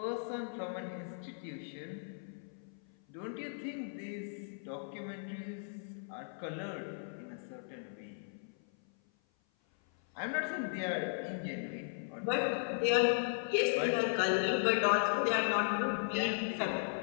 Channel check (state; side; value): silent; right; 53 dB below the other